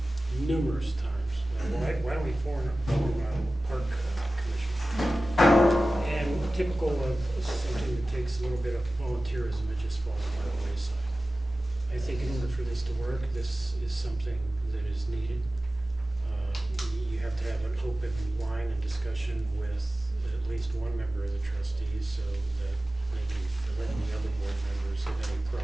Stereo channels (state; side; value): normal; both; correlation 0.96